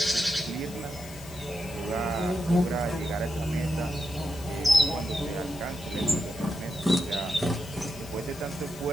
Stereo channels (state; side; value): noise; left; hiss, 16 dB below the sound